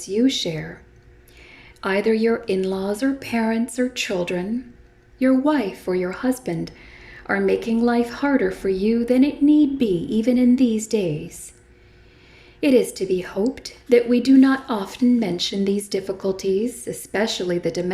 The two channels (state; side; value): identical; both; correlation 1.00